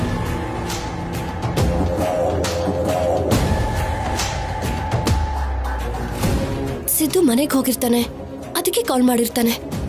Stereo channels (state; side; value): identical; both; correlation 1.00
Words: ಸಿದ್ದು ಮನೆಗೆ ಹೋಗಿರ್ತಾನೆ, ಅದಕ್ಕೆ ಕಾಲ್ ಮಾಡಿರ್ತಾನೆ.